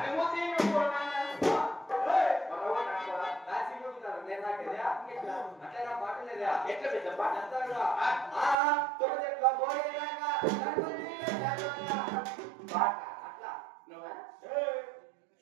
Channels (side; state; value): left; drops out; at 8.6 s